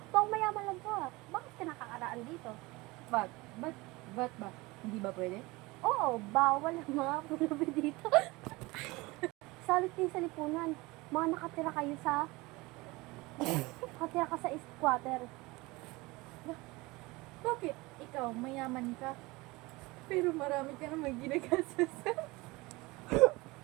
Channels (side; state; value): left; quieter; 22.7 dB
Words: Pang mayaman lang ka. Bakit ka nakakaraan dito? Ba't? Ba't ba? Hindi ba pwede? Oo, bawal ang mga pulubi dito. Salit din sa lipunan. Mga nakatira kayo sa... nakatira ka sa squatter. Bakit? Ikaw, mayaman ka. Pero marami ka naman ginagastos.